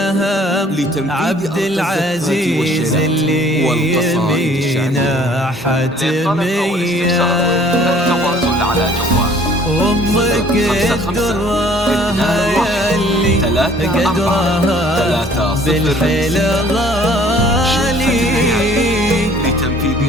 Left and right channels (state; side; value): normal; both; correlation 0.55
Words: لتنفيذ عبد أرض العزيز الزفات اللي والقصائد يمينا حتمية. التواصل على جوال أمك الدرة ياللي قدرها بالحيل غالي،